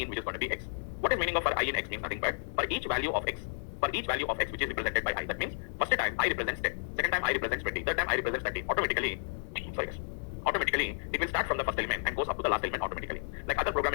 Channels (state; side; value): silent; right; digital silence